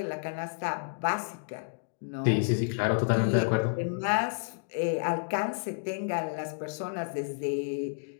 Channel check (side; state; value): right; silent; digital silence